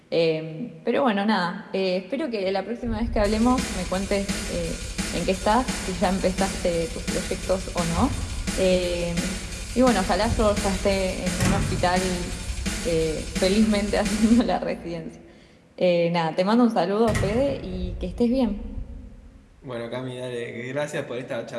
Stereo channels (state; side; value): identical; both; correlation 1.00